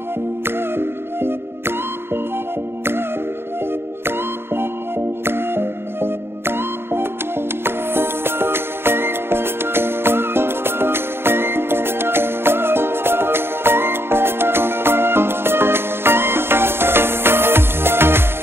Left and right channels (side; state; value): left; late; 0.11 ms